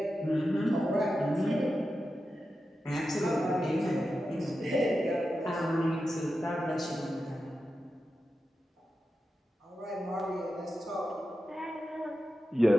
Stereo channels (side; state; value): both; normal; correlation 0.91